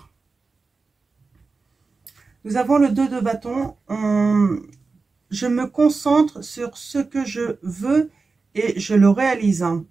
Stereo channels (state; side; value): quieter; left; 4.2 dB